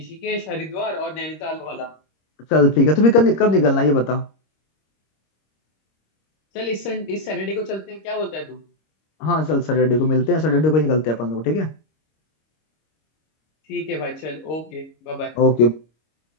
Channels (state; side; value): late; right; 26 ms